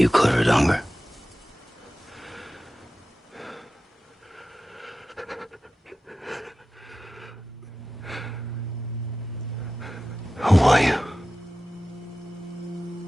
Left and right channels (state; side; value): normal; both; correlation 0.94